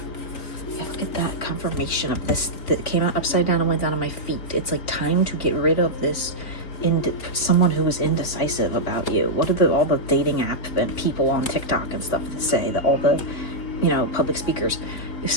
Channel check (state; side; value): late; right; 3.7 ms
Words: Get that confirmation of this that came out upside down and went down on my feet. It's like time to get rid of this someone who is indecisive about you. What are all the dating app and people on TikTok and stuff that say that all the, you know, public speakers, if